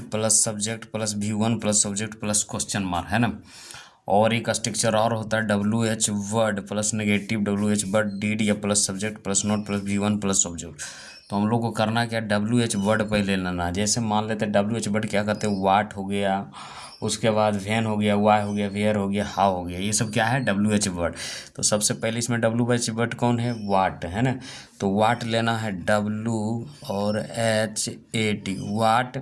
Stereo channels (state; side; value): identical; both; correlation 1.00